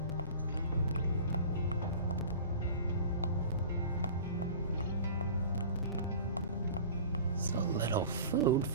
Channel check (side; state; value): both; inverted; correlation -0.40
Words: So little food